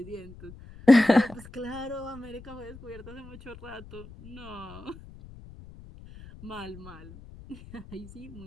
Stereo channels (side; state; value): left; noise; rumble, 18 dB below the sound